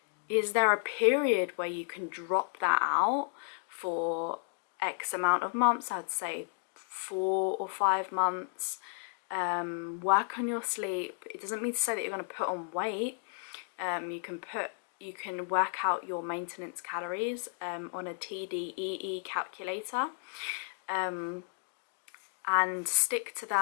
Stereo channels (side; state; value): right; silent; 56 dB below the other